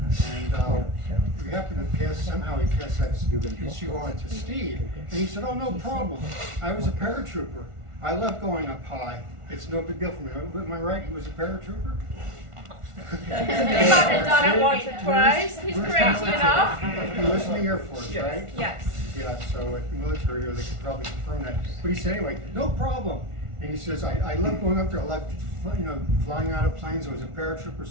we happened to somehow he passed that issue on to Steve, and he said, oh, no problem. I was a paratrooper. I love going up high. It's no big deal for me. Am I right? He was a paratrooper? He's done it once or twice. He's crazy enough. He was in the Air Force, right? Yes. Yeah, so at the military, they could probably confirm that. But he said, anyway, no problem. And he says, I love going up there. I love, flying out of planes. I was a paratrooper.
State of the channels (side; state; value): left; late; 1.4 ms